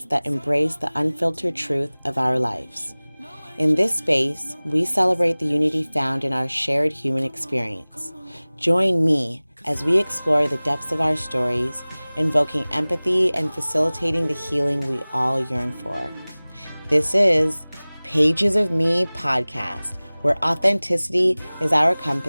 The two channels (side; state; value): both; inverted; correlation -1.00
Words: that embrace the unfiltered truth of our lives. In this space, we celebrate the unity found in our shared human experience. Join me as we explore the depths of our stories, invoking empathy and facilitating the healing we all yearn for. This is Pages of Me podcast, where authenticity is our